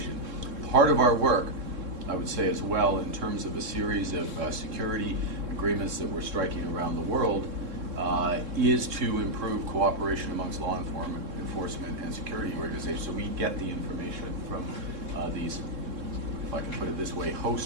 Part of our work, I would say as well, in terms of a series of security agreements that we're striking around the world, is to improve cooperation amongst law enforcement and security organizations, so we get the information from these, if I can put it this way,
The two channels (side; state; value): left; late; 3.7 ms